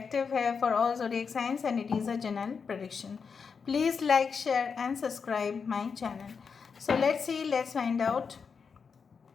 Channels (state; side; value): quieter; right; 5.8 dB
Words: है for all zodiac signs and it is a general prediction। Please like, share and subscribe my channel। So let's see, let's find out